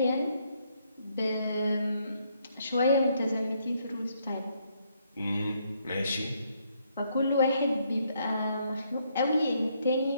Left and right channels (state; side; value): inverted; both; correlation -0.72